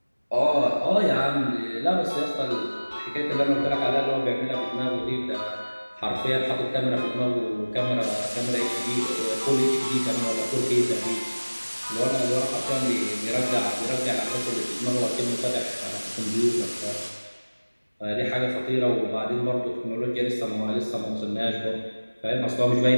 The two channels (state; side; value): inverted; both; correlation -1.00